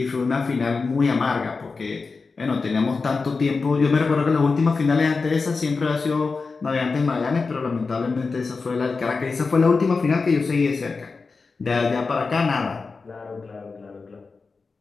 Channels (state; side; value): quieter; right; 4.4 dB